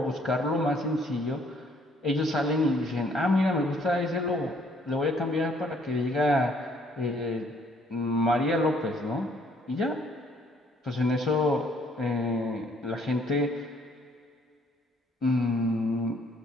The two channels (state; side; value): normal; both; correlation 0.64